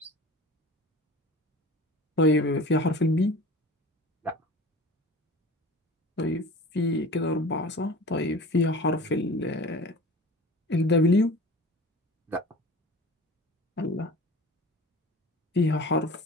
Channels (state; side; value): normal; both; correlation 0.38